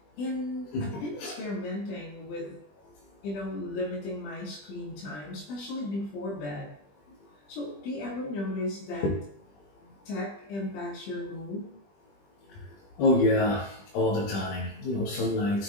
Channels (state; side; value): late; right; 20 ms